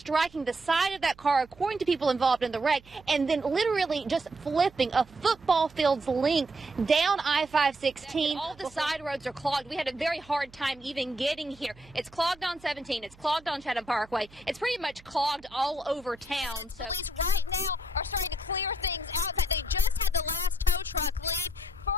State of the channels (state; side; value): noise; right; hum, 25 dB below the sound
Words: the side of that car, according to people involved in the wreck, and then literally just flipping a football field's length down I-516. All the side roads are clogged. We had a very hard time even getting here. It's clogged on 17. It's clogged on Chatham Parkway. It's pretty much clogged all over town. So.